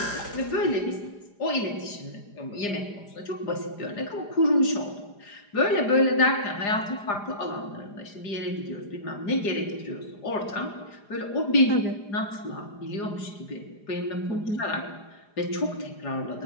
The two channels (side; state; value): right; late; 4.9 ms